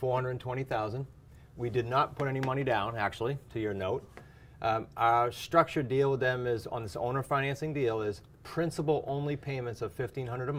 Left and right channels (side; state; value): both; identical; correlation 1.00